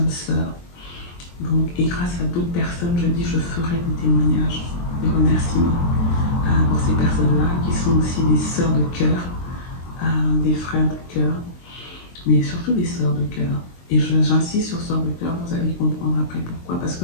sœurs. Donc, et grâce à d'autres personnes, je dis, je ferai des témoignages, des remerciements pour ces personnes-là, qui sont aussi des sœurs de cœur, des frères de cœur, mais surtout des sœurs de cœur. Et j'insiste sur sœurs de cœur, vous allez comprendre après pourquoi. Parce que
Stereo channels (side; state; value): right; late; 23 ms